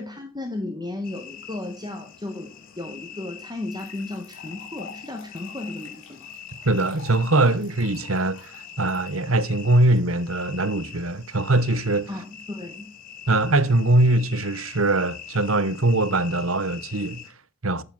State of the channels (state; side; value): normal; both; correlation 0.46